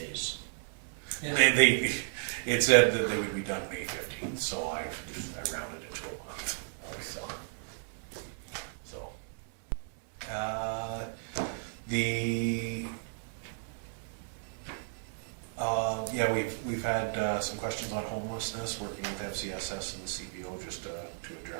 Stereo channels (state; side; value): silent; left; digital silence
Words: Yeah. It said that they would be done May 15th, so I rounded it to a month. We've had some questions on homelessness, working with FCSS and the CPO just to